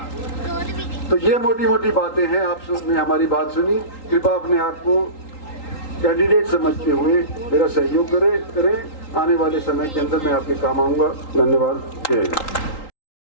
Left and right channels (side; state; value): right; late; 3.8 ms